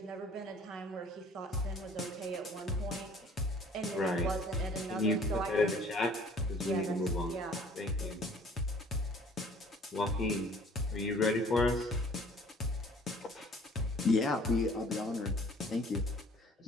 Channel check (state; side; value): normal; both; correlation 0.53